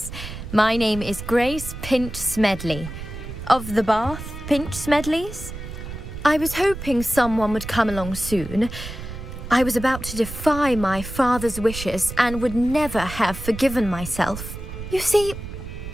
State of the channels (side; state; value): right; noise; rumble, 10 dB below the sound